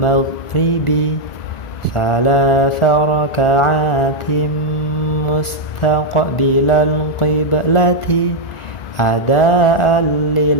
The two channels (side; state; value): right; late; 1.4 ms